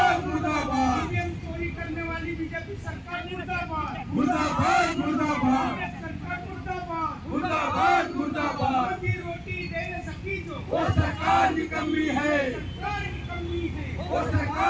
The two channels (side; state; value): both; identical; correlation 1.00